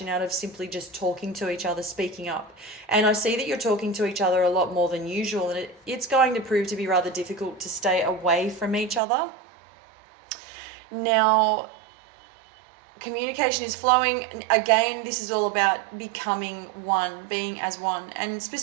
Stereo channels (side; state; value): left; drops out; at 9.0 s